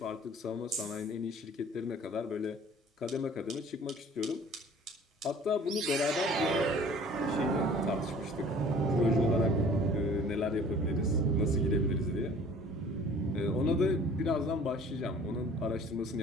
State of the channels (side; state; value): both; normal; correlation 0.50